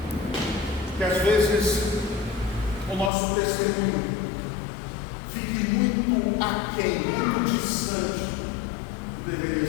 que às vezes o nosso testemunho fique muito aquém, muito distante do que deveria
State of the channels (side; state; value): right; drops out; at 3.1 s